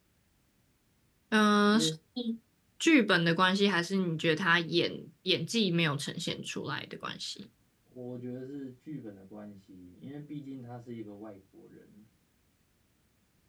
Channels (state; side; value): identical; both; correlation 1.00